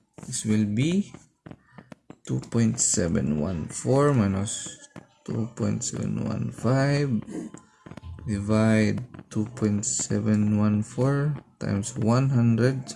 this will be 2.714 minus 2.715 divide 2.714 times 100.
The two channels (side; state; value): both; identical; correlation 1.00